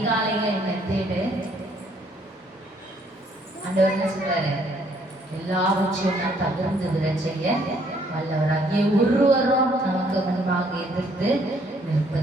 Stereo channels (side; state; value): both; normal; correlation 0.66